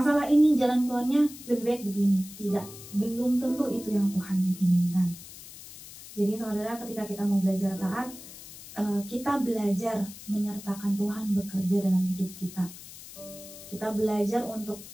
ini jalan keluarnya lebih baik begini. Tidak, belum tentu itu yang Tuhan inginkan. Jadi saudara, ketika kita mau belajar taat, kita belajar menyertakan Tuhan bekerja dalam hidup kita. Kita belajar untuk,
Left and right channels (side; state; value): left; noise; hiss, 16 dB below the sound